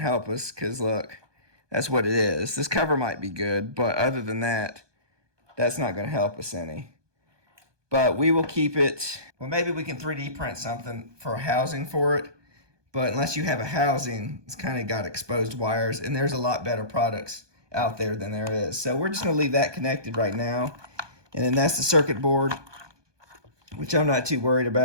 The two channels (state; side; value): late; left; 1.2 ms